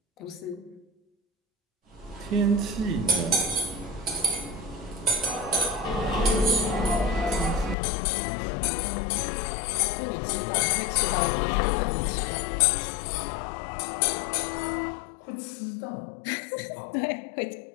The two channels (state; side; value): drops out; right; at 7.8 s